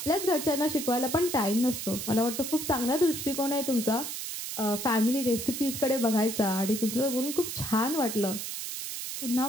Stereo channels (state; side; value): noise; right; hiss, 6 dB below the sound